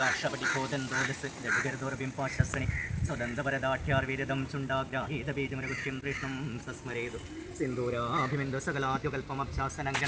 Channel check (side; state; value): both; identical; correlation 1.00